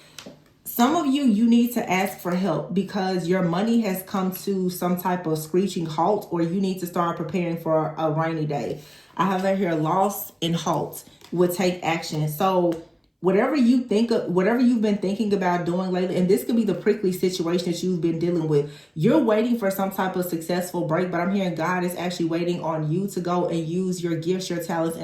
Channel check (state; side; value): identical; both; correlation 1.00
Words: Some of you, you need to ask for help because your money has come to some type of screeching halt, or you need to start preparing for a rainy day. I have right here, loss and halt will take action. So whatever you think of, whatever you've been thinking about doing lately, and this could be the prickly situation that you've been dealing with. You're waiting for some type of successful break, but I'm hearing God is actually waiting on you to go and use your gifts, your talents,